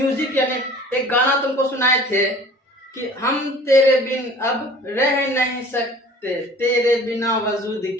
यानी एक गाना तुमको सुनाए थे कि हम तेरे बिन अब रह नहीं सकते, तेरे बिना वजूद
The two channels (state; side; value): normal; both; correlation 0.47